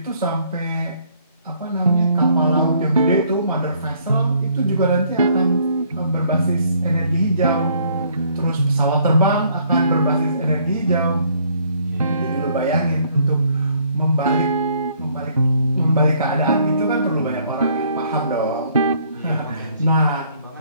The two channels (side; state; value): both; inverted; correlation -0.64